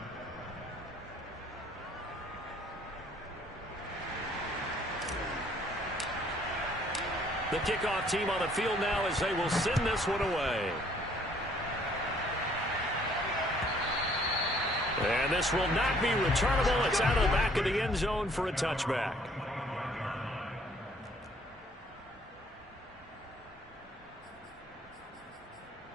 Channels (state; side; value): normal; both; correlation 0.61